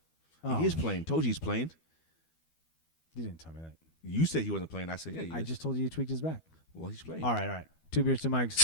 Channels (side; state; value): right; late; 12 ms